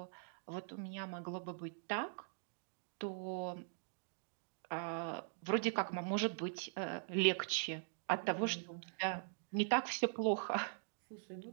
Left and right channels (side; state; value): left; silent; digital silence